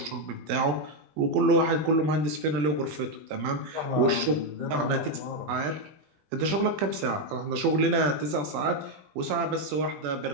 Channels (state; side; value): late; left; 20 ms